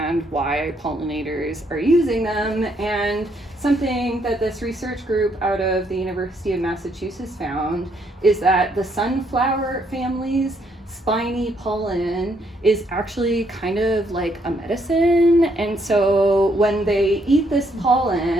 why pollinators are using them, and something that this research group out of the University of Massachusetts found is that the sunflower family's spiny pollen is actually kind of like a medicine, and so when they eat this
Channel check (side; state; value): both; normal; correlation 0.72